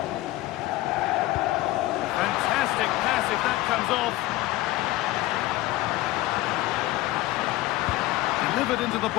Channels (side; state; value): right; quieter; 17.1 dB